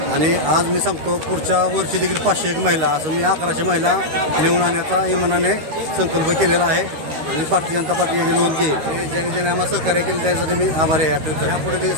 आणि आज मी सांगतो पुढच्या वर्षी देखील 501 महिला, असं मी 1100 महिला नेऊन आणण्याचा इमानाने संकल्प केलेला आहे. आणि भारतीय जनता पार्टी याची नोंद घेईल. ज्यांनी आम्हाला सहकार्य केलं त्यासाठी मी आभारी आहे. यापुढे ते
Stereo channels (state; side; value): late; left; 13 ms